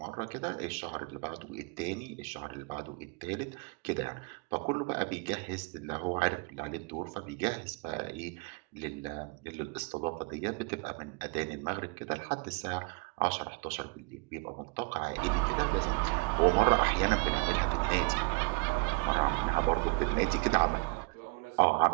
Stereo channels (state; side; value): quieter; left; 30.4 dB